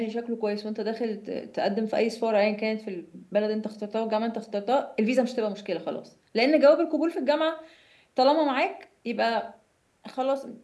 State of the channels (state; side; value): identical; both; correlation 1.00